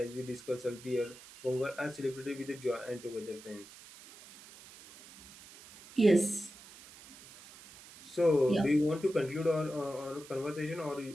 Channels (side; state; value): right; noise; hiss, 19 dB below the sound